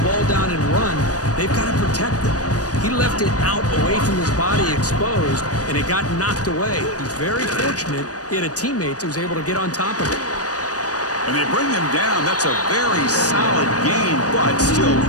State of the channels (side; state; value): right; late; 0.67 ms